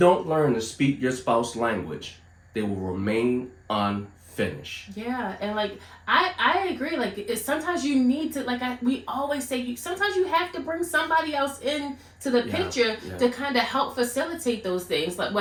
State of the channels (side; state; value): both; identical; correlation 1.00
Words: learn to speak your spouse's language, they will remain unfinished. Yeah, and like I agree. Like sometimes you need to, like we always say, sometimes you have to bring somebody else in to the picture to kind of help facilitate those things. Like